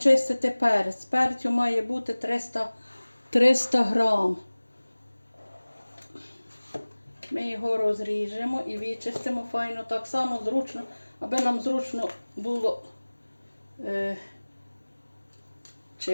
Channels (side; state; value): both; inverted; correlation -1.00